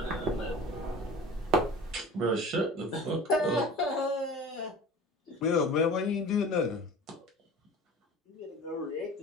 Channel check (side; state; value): both; normal; correlation 0.39